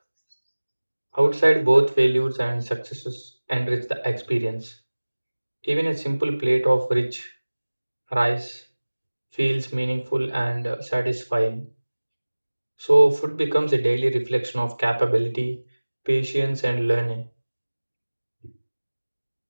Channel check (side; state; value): both; inverted; correlation -1.00